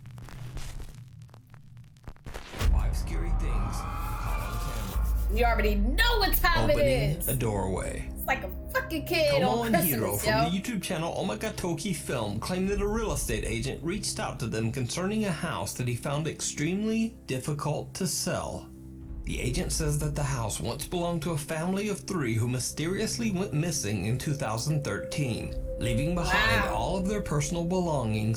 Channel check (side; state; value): both; identical; correlation 1.00